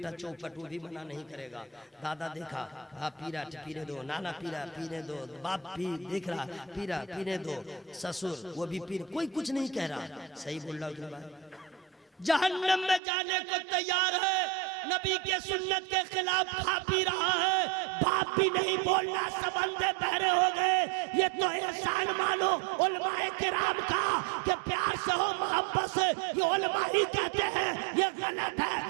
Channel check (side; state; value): left; drops out; at 13.0 s